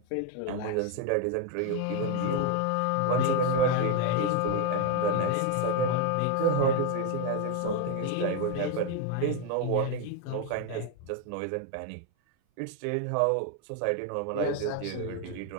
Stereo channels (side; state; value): both; different; correlation 0.01